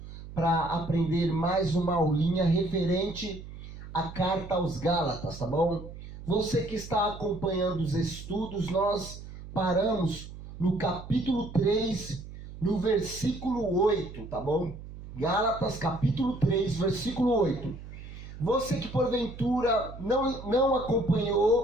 para aprender mais uma aulinha referente à carta aos Gálatas, tá bom? Você que está acompanhando os estudos, nós paramos no capítulo 3, no versículo 8, tá bom? Gálatas, capítulo 3, versículo 8. Você que porventura não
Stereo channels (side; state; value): right; noise; hum, 13 dB below the sound